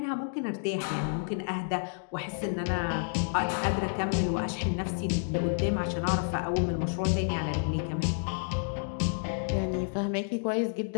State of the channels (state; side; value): silent; right; digital silence